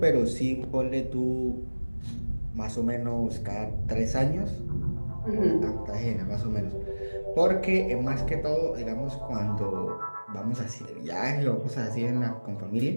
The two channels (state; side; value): inverted; both; correlation -1.00